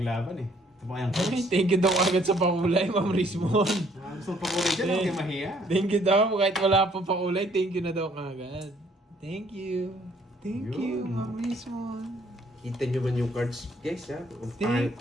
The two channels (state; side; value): normal; both; correlation 0.63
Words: eh. Ito pa kayang Ay, coach. thank you daw agad sa pakulay, Ma'am Rismon. Gusto mong pakulay dyan, huwag kayo mahiya. Thank you daw, kahit wala pa pakulay, thank you na daw agad. Thank you. Thank you, Yun. Ma'am Rismon. Kita nyo man yung cards, guys, ha? Ang pangit